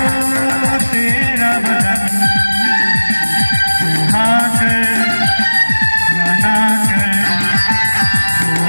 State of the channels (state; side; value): inverted; both; correlation -1.00